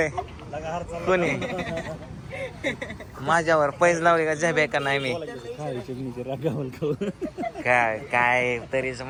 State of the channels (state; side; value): identical; both; correlation 1.00